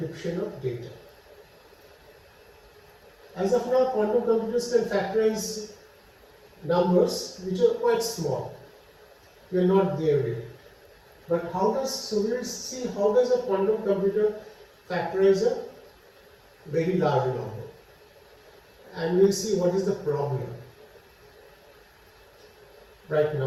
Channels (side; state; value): both; identical; correlation 1.00